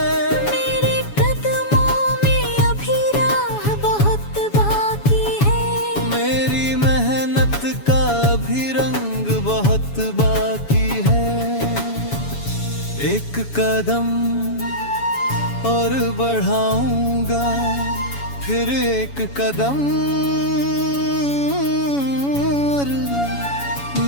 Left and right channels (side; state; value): right; late; 7.1 ms